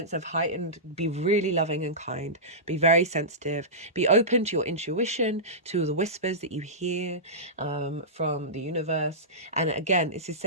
of heightened, be really loving and kind, be very sensitive, be open to your intuition, to the whispers that you hear from the universe. And again, this is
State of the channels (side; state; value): both; normal; correlation -0.18